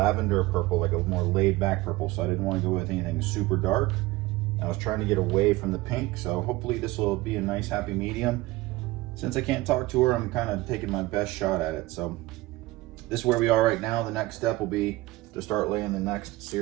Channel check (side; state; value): left; quieter; 19.5 dB